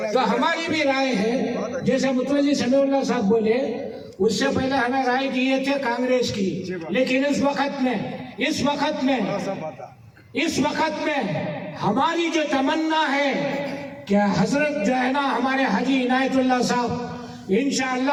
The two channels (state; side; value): identical; both; correlation 1.00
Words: तो हमारी भी राय है, जैसे मुतवल्ली समीउल्लाह साहब बोले, उससे पहले हमें राय दिए थे कांग्रेस की, लेकिन इस वक्त में हमारी जो तमन्ना है कि हजरत जो है ना हमारे हाजी इनायतुल्लाह साहब